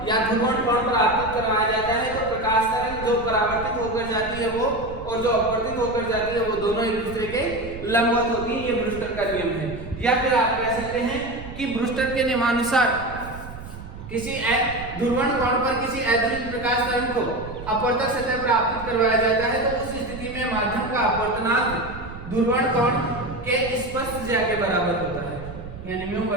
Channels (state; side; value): noise; right; rumble, 13 dB below the sound